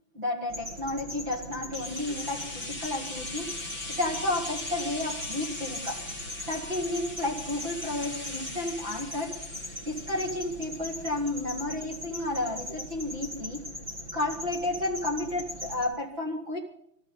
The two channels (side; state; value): left; late; 5.9 ms